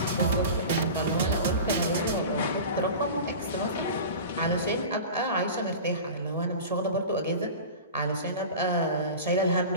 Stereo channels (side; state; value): both; inverted; correlation -0.33